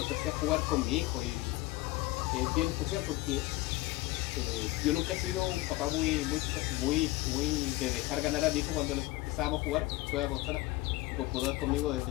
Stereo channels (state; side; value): quieter; right; 19.3 dB